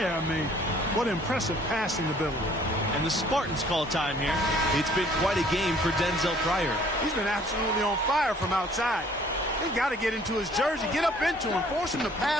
I mean, what impressive passing ability. And the Spartans call time here. It's been quite a game for Denzel Pryor. He's been absolutely on fire from outside. They've got to get into his jersey, get up into him, force him to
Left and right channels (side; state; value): both; normal; correlation 0.57